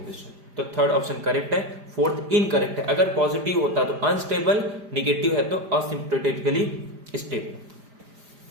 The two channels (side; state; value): left; late; 5.0 ms